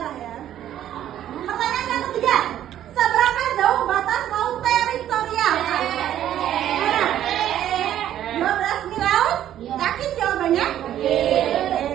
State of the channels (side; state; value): left; quieter; 11.5 dB